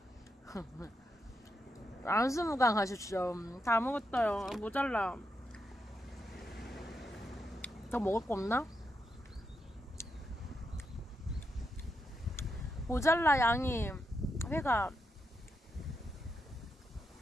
안수무강 하십시오. 다 먹었어요. 모자라. 더 먹을 거 없나? 모자라 양이. 회가.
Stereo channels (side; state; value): both; normal; correlation 0.83